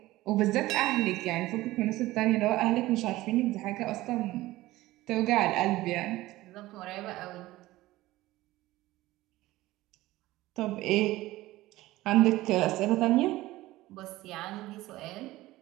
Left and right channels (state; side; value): quieter; left; 17.5 dB